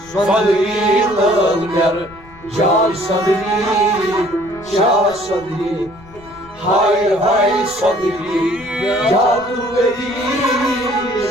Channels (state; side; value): noise; left; rumble, 23 dB below the sound